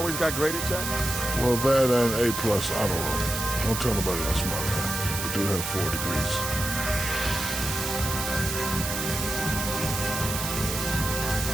got graded, Jack? Well, that and A plus, I don't know. Don't tell nobody else about that. We do have 4 degrees.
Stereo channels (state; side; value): noise; right; hiss, 4 dB below the sound